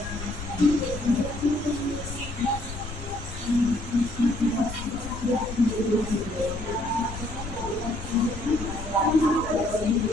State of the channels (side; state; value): left; noise; rumble, 9 dB below the sound